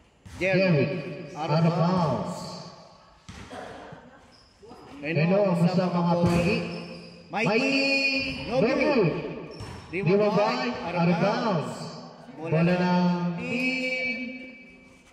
Jerry. Out of bounds. Reno ang sa mga pogi. Mikey. No good. Dimabay. Out of bounds. Bola ng team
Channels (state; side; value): identical; both; correlation 1.00